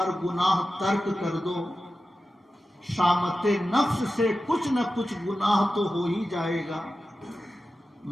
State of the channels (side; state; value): both; normal; correlation 0.93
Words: گناہ ترک کر دو، شامت نفس سے کچھ نہ کچھ گناہ تو ہو ہی جائے گا،